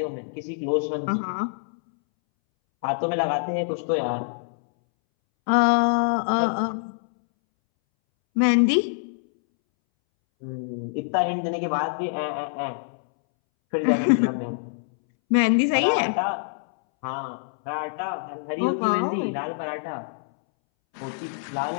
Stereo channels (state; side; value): silent; right; 62 dB below the other